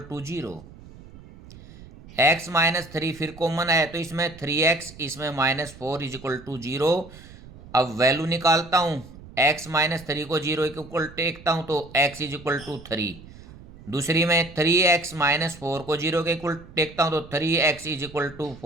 to 0। x minus 3 फिर कॉमन है तो इसमें 3x, इसमें -4 इज इक्वल टू 0। अब वैल्यू निकालता हूँ, x माइनस 3 को 0 के इक्वल टेकता हूँ तो x इज इक्वल टू 3। दूसरी में 3x माइनस 4 को 0 के इक्वल टेकता हूँ तो 3x इज इक्वल टू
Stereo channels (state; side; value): noise; right; rumble, 19 dB below the sound